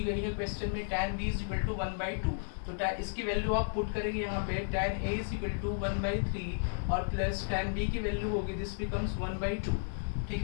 गई है क्वेश्चन में, tan b is equal to 1/2। तो इसकी वैल्यू आप पुट करेंगे यहाँ पे, tan a is equal to 1/3 और प्लस tan b की वैल्यू होगी, दिस बिकम्स 1/2। ठीक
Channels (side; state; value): right; silent; digital silence